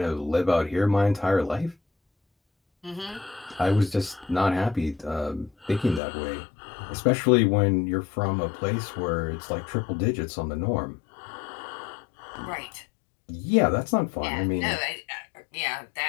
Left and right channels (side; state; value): right; drops out; at 6.0 s